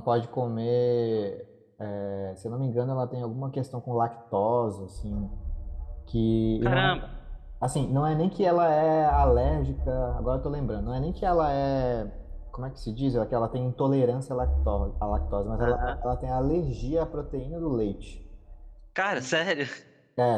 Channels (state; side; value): identical; both; correlation 1.00